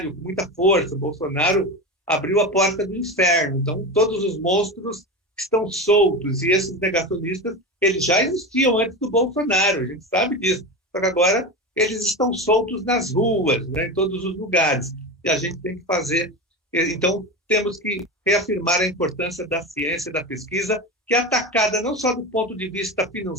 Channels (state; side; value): normal; both; correlation 0.23